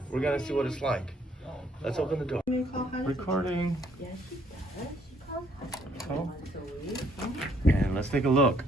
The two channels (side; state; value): both; normal; correlation 0.66